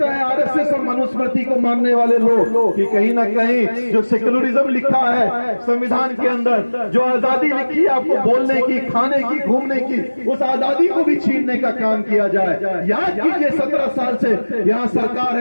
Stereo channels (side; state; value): both; inverted; correlation -1.00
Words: है आरएसएस और मनुस्मृति को मानने वाले लोग कि कहीं ना कहीं जो सेक्युलरिज्म लिखा है संविधान के अंदर, जो आजादी लिखी है आपको बोलने की, खाने की, घूमने की, उस आजादी को भी छीनने का काम किया जाए। याद कीजिए 17 साल से यहाँ सरकार